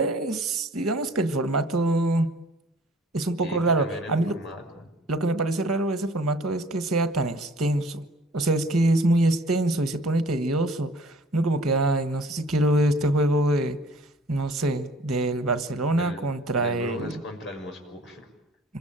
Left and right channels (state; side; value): normal; both; correlation 0.52